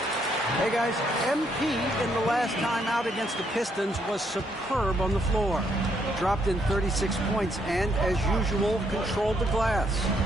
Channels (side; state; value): both; normal; correlation 0.73